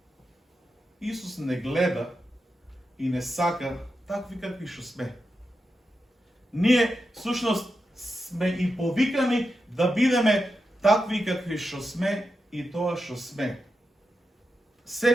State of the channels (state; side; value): normal; both; correlation 0.88